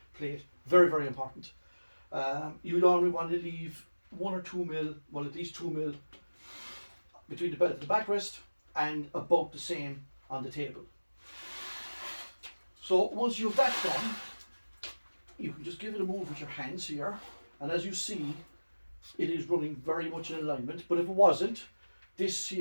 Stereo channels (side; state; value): both; inverted; correlation -1.00